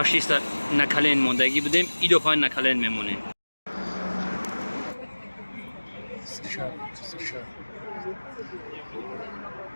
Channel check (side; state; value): both; inverted; correlation -1.00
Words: نکلین موندگی بودیم ای دفعه نکلین میمونیم.